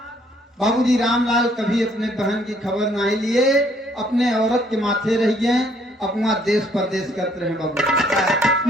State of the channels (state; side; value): normal; both; correlation 0.65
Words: बाबूजी रामलाल कभी अपने बहन की खबर नहीं लिए, अपने औरत के माथे रह गए, अपना देश परदेश करते रहे बाबू।